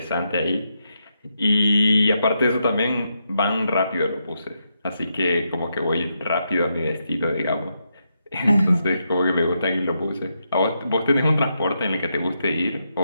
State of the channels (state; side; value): inverted; both; correlation -0.82